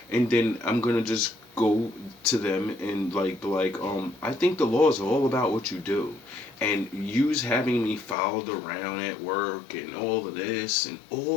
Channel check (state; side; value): drops out; right; at 8.2 s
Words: And then I'm gonna just go to them and I think the law is all about what you do. And use having me followed around at work and all of this and